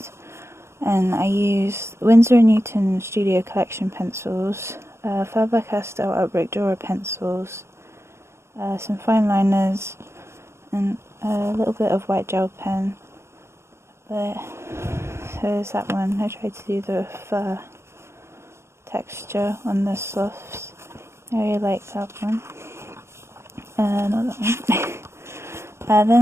and I used Winsor & Newton Studio Collection pencils, Faber-Castell Albrecht Dürer pencils, some fine liners, and a little bit of white gel pen. But so there's that one. I tried to do the fur texture on the sloths. I really like that one. Not that one.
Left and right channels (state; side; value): late; left; 0.13 ms